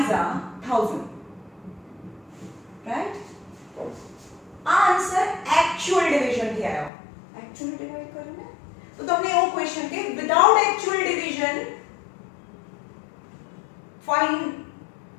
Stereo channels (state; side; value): drops out; right; at 6.9 s